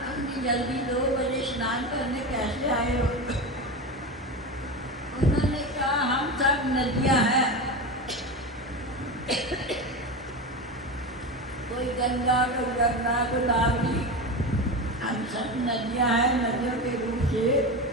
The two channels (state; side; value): normal; both; correlation 0.22